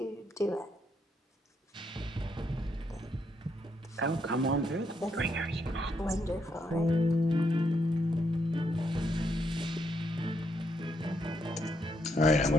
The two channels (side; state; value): both; normal; correlation 0.76